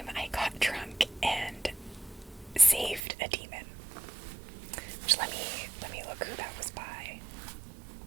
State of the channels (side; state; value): left; drops out; at 3.0 s